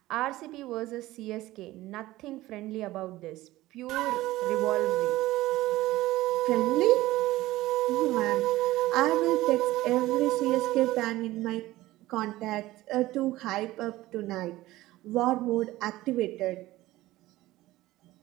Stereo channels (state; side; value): quieter; left; 17.1 dB